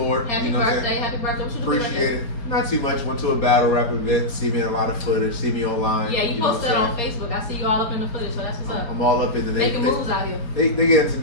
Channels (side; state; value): right; late; 4.3 ms